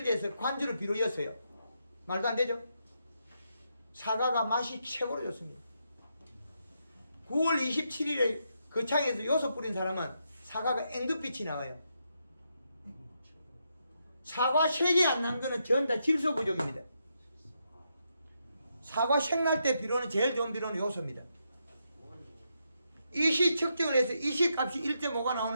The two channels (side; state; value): both; inverted; correlation -0.81